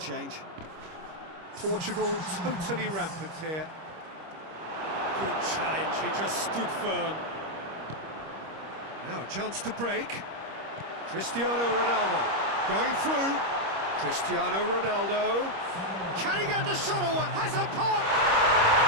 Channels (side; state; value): left; late; 25 ms